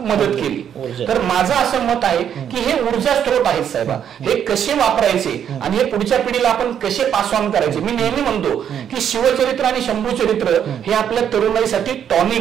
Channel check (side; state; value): left; quieter; 9.0 dB